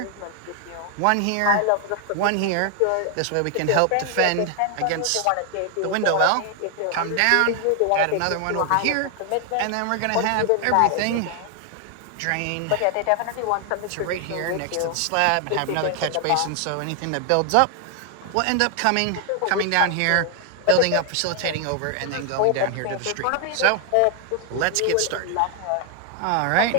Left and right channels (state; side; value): different; both; correlation 0.00